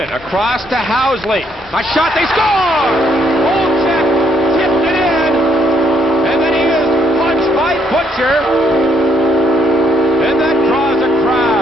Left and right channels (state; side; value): normal; both; correlation 0.71